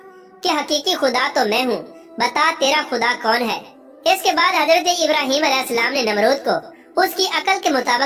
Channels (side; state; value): both; identical; correlation 1.00